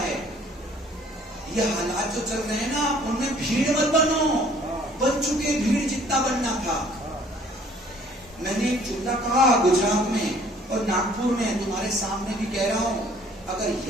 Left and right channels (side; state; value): both; normal; correlation 0.56